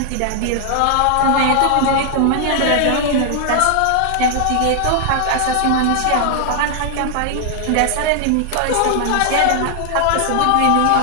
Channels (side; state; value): both; different; correlation 0.00